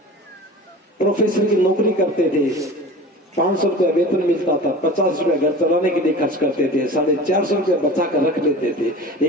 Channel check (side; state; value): both; normal; correlation 0.36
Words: प्रोफेसर की नौकरी करते थे, 500 रुपया वेतन मिलता था, 50 रुपया घर चलाने के लिए खर्च करते थे, 450 रुपया बचा कर रख लेते थे,